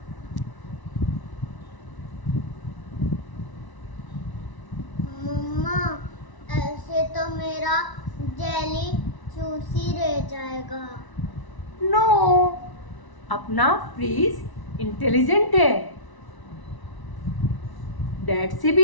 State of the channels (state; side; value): late; right; 1.0 ms